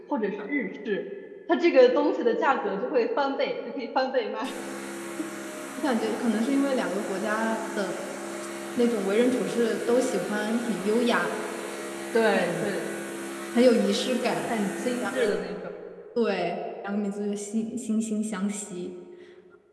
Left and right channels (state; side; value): identical; both; correlation 1.00